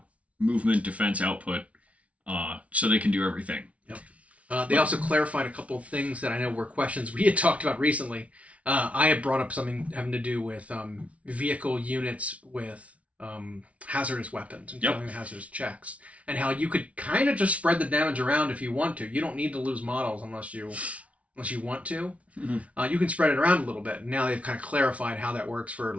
Movement, defense, output, so they can do everything. Yep. They also clarified a couple of things that I know were questions we had talked about recently. I had brought up something having to do with vehicle units with hazardous weapons and failing the hazardous checks, and how you could kind of just spread the damage around if you want to. You don't need to lose models unless you want to. You can spread it around a little bit. Now they've kind of clarified how that works for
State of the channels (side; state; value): left; late; 0.065 ms